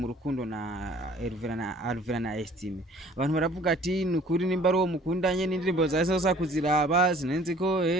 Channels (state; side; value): normal; both; correlation 0.52